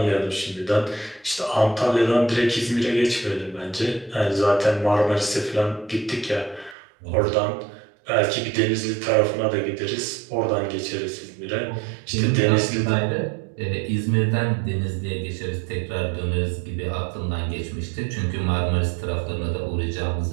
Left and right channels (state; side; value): drops out; left; at 6.8 s